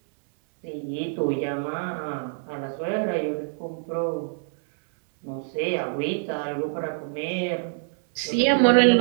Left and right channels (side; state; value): left; silent; 61 dB below the other